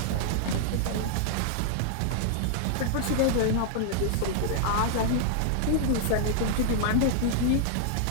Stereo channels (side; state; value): both; different; correlation -0.01